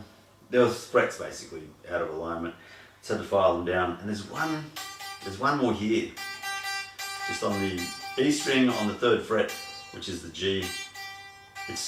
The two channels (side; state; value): both; identical; correlation 1.00